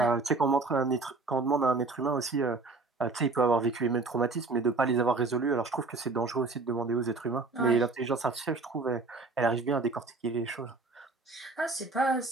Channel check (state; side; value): quieter; left; 3.7 dB